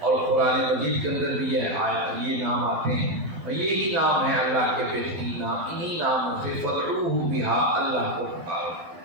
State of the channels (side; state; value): left; late; 12 ms